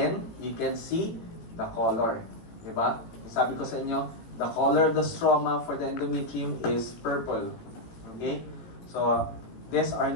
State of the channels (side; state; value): right; late; 18 ms